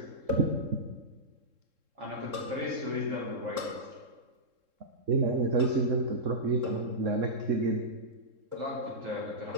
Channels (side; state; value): left; late; 3.7 ms